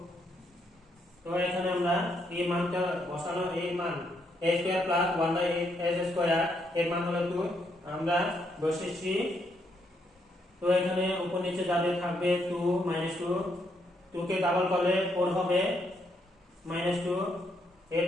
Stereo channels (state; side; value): normal; both; correlation 0.76